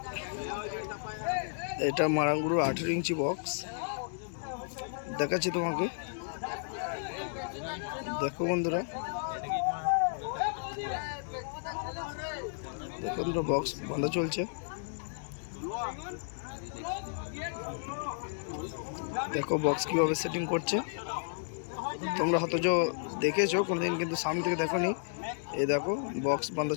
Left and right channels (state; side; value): silent; right; digital silence